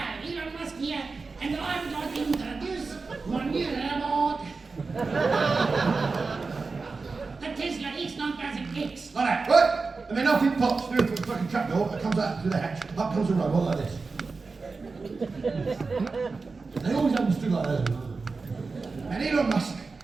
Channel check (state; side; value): quieter; left; 4.2 dB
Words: Elon Musk here, and I would like to introduce my new robot. The Tesla X9000X. Like that, right? And then off it pops through the fucking trap door, it comes out through the hatch, up comes a robot like this. They always understood like that. And Elon Musk,